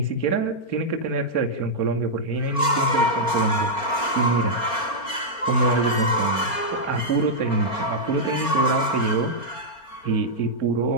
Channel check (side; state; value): right; late; 4.4 ms